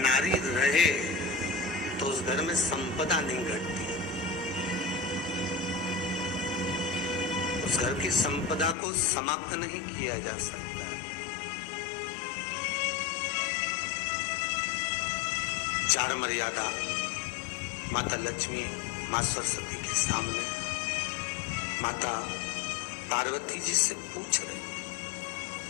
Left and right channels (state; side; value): drops out; right; at 8.8 s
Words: नारी रहे तो उस घर में संपदा नहीं घटती। उस घर की संपदा को समाप्त नहीं किया जा सकता। चार मर्यादा माता लक्ष्मी, मां सरस्वती के सामने माता पार्वती जी से पूछ रहे,